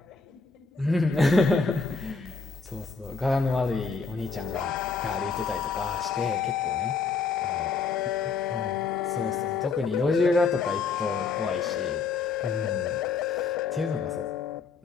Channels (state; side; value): quieter; right; 4.9 dB